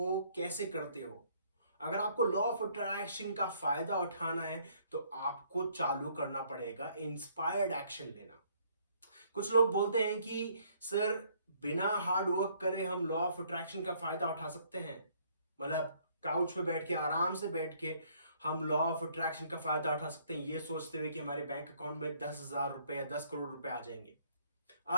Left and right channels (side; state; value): both; inverted; correlation -0.64